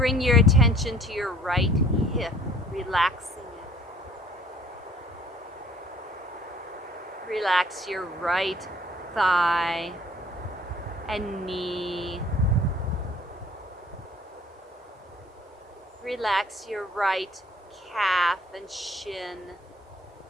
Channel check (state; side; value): normal; both; correlation 0.54